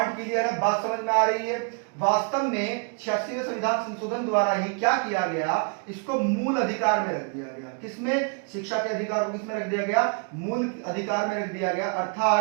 क्लियर है, बात समझ में आ रही है। वास्तव में 86वें संविधान संशोधन द्वारा ही क्या किया गया, इसको मूल अधिकार में रख दिया गया। किसमें, शिक्षा के अधिकार को किसमें रख दिया गया, मूल अधिकार में रख दिया गया,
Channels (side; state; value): left; quieter; 39.3 dB